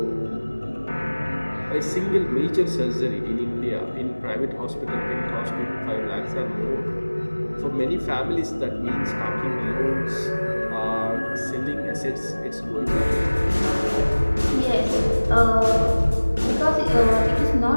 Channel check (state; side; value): inverted; both; correlation -1.00